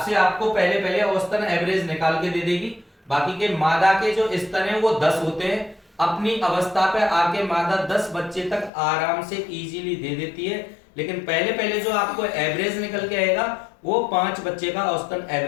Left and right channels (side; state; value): right; drops out; at 8.7 s